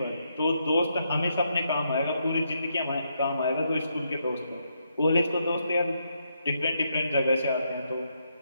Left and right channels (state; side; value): inverted; both; correlation -0.79